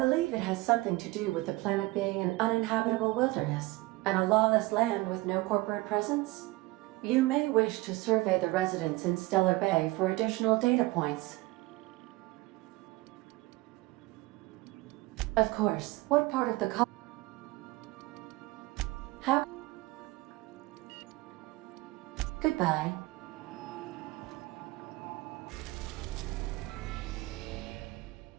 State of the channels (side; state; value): left; quieter; 20.7 dB